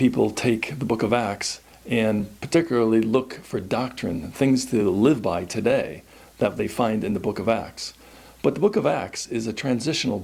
take the book of Acts and particularly look for doctrine, things to live by today that they find in the book of Acts. But the book of Acts is a transitional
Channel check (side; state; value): both; identical; correlation 1.00